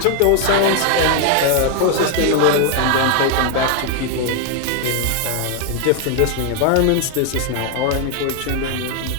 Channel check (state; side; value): different; both; correlation 0.00